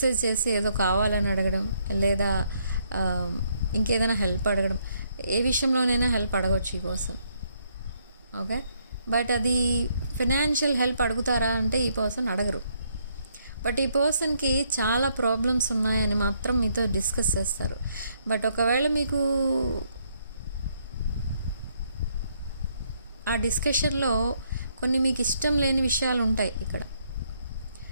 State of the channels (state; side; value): inverted; both; correlation -0.72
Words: చేసి ఏదో కావాలని అడగడం, లేదా ఇంకేదైనా హెల్ప్ అడగడం, ఏ విషయంలోనైనా హెల్ప్ అడగవచ్చు ఈ పర్సన్. ఓకే, బట్ అది ఫినాన్షియల్ హెల్ప్ అడుగుతారా అంటే ఈ పర్సన్ అడగరు. బట్ ఈ పర్సన్కి చాలా ప్రాబ్లమ్స్ ఉన్నాయని మాత్రం మీతో డిస్కస్ చేస్తారు. బట్ ఒకవేళ మీకు ఆ డిస్కషన్లో కొన్ని మీకు ఇష్టం లేని విషయాలు ఉంటాయి. ఇక్కడ